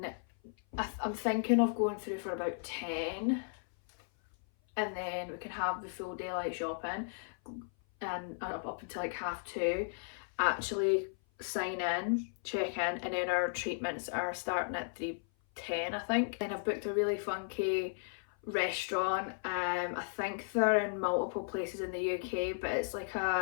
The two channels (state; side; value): silent; right; 54 dB below the other